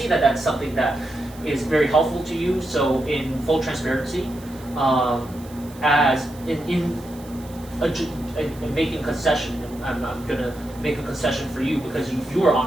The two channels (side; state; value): right; noise; hiss, 22 dB below the sound